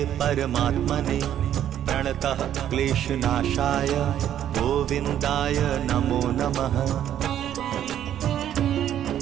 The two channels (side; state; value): left; quieter; 10.8 dB